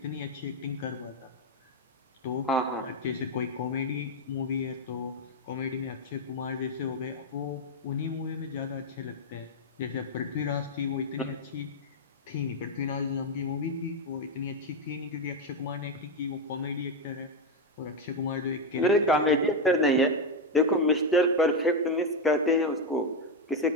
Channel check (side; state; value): both; normal; correlation 0.06